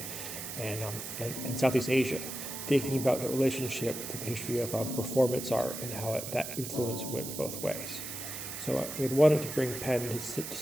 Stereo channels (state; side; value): noise; right; hiss, 7 dB below the sound